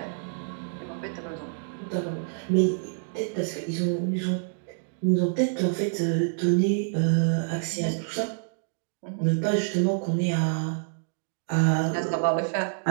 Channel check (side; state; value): left; silent; digital silence